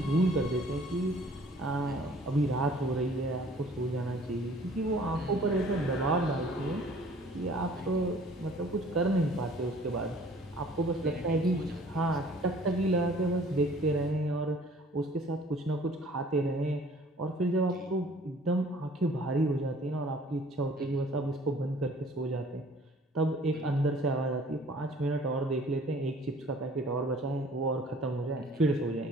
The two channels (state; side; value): normal; both; correlation 0.53